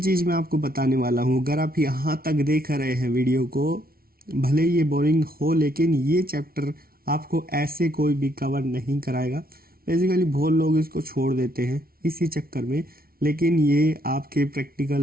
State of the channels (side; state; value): left; late; 0.43 ms